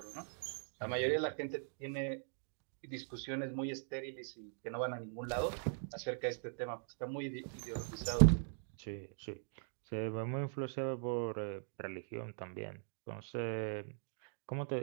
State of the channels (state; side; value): silent; left; digital silence